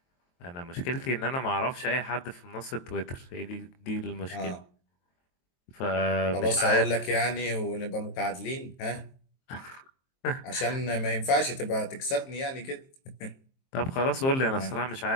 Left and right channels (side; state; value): right; late; 23 ms